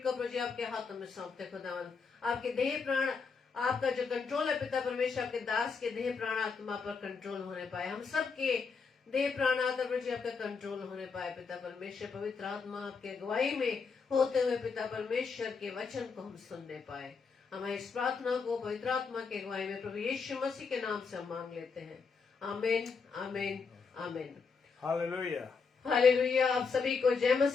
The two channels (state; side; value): quieter; right; 5.2 dB